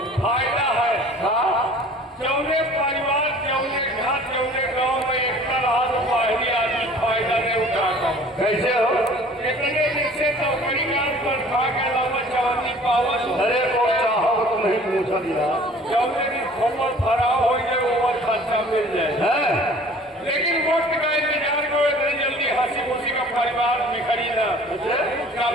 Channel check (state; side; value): normal; both; correlation 0.49